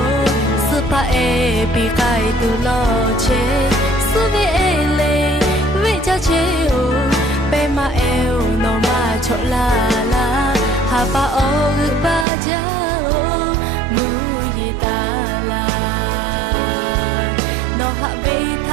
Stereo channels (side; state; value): left; drops out; at 12.2 s